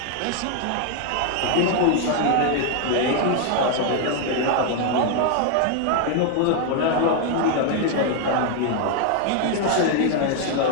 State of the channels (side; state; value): both; different; correlation 0.00